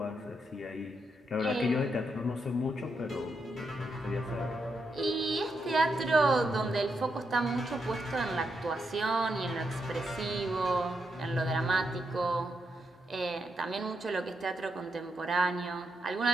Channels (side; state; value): both; normal; correlation 0.82